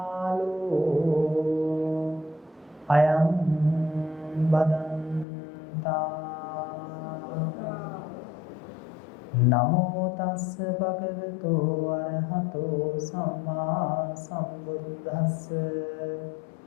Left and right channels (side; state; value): right; drops out; at 5.2 s